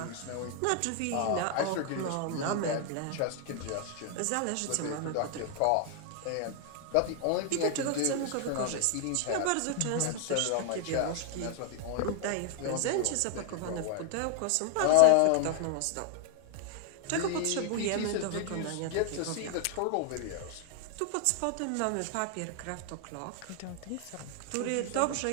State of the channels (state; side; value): different; both; correlation 0.00